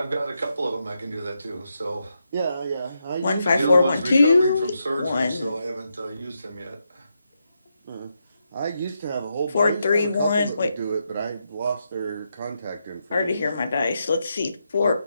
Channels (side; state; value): both; inverted; correlation -0.83